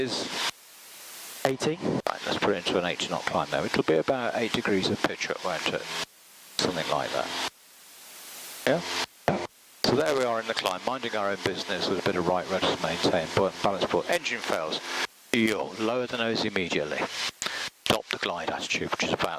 80. right, let's put it into an 80 knot climb now. It'll be about 8 degrees of pitch up, won't it? Something like that. Yeah? So there we are in the climb, minding our own business with a bit of right rudder to maintain, buoyant balance port. Engine fails. You'll lower the nose immediately. Stop the glide attitude, which is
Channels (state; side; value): identical; both; correlation 1.00